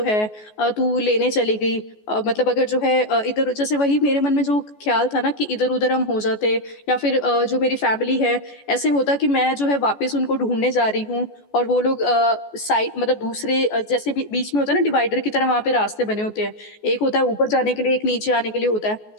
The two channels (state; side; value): late; right; 14 ms